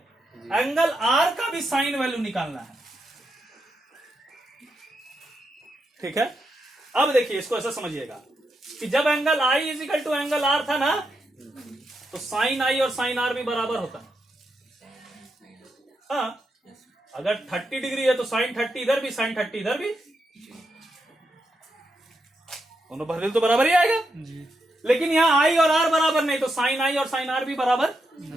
एंगल आर का भी साइन वैल्यू निकालना है। ठीक है, अब देखिए इसको ऐसा समझिएगा कि जब angle I is equal to angle R था ना, तो साइन आई और साइन आर भी बराबर होता है। हाँ, अगर 30 डिग्री है तो साइन 30 इधर भी, साइन 30 इधर भी, दोनों भर तो बराबर ही आएगा जी। लेकिन यहां आई और आर बराबर नहीं, तो साइन आई और साइन आर भी बराबर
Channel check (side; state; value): both; normal; correlation 0.83